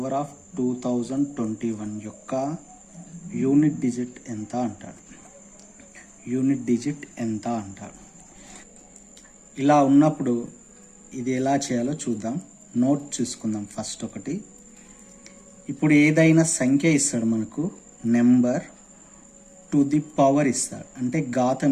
of 2021 యొక్క యూనిట్ డిజిట్ ఎంత అంటాడు. ఇలా ఉన్నప్పుడు ఇది ఎలా చేయాలో చూద్దాం. నోట్ చూసుకుందాం ఫస్ట్ ఒకటి. ఇప్పుడు ఏదైనా సంఖ్య ఇస్తాడు మనకు, నెంబర్ టు ది పవర్ ఇస్తాడు, అంటే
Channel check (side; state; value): both; identical; correlation 1.00